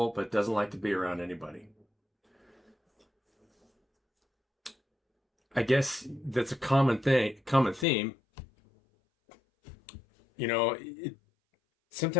but doesn't like to be around anybody. I guess that's a common theme. You know,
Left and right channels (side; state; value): right; drops out; at 7.9 s